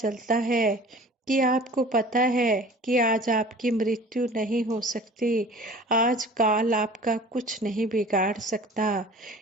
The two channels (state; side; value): normal; both; correlation 0.44